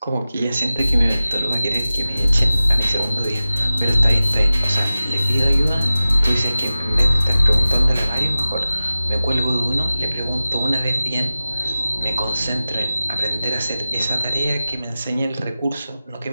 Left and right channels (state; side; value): inverted; both; correlation -0.96